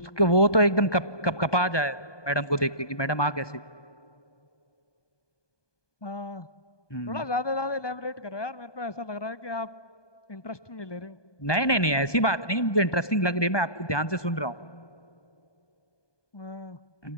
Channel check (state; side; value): late; right; 1.2 ms